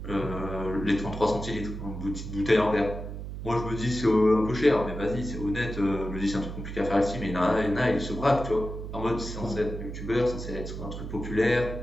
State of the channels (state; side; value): noise; right; hum, 8 dB below the sound